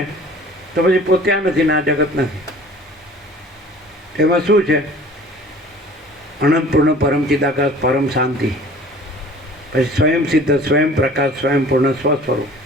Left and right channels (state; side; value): normal; both; correlation 0.47